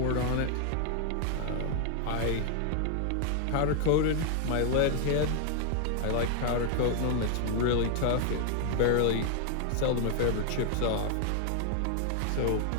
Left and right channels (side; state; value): both; different; correlation 0.00